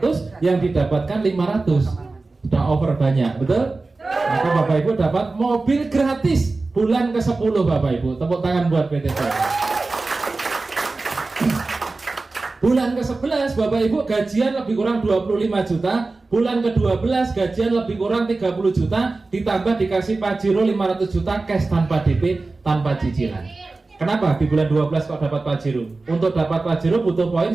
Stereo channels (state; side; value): quieter; left; 3.5 dB